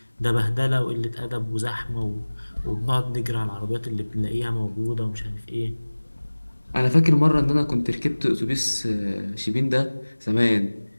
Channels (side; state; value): both; inverted; correlation -1.00